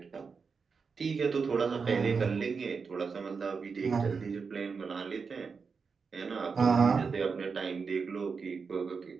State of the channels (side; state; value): left; quieter; 5.3 dB